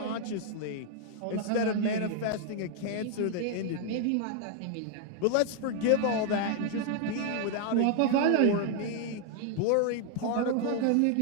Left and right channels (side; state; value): both; different; correlation 0.00